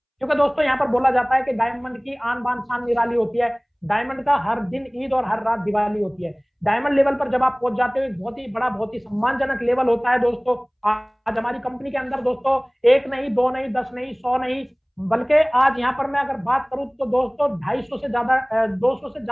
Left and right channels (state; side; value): identical; both; correlation 1.00